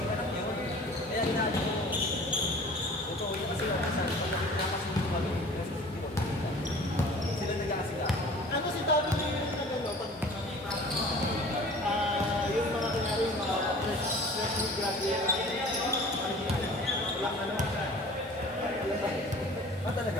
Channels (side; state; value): both; normal; correlation 0.45